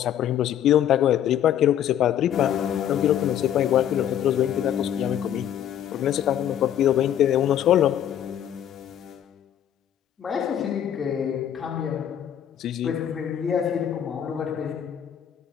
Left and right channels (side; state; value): right; quieter; 10.3 dB